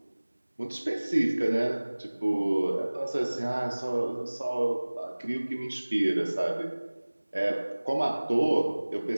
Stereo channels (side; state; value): both; inverted; correlation -1.00